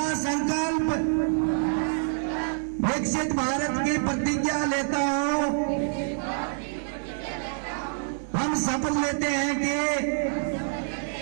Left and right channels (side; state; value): left; silent; digital silence